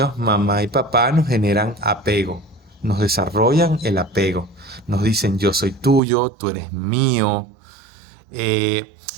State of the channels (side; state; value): left; drops out; at 6.0 s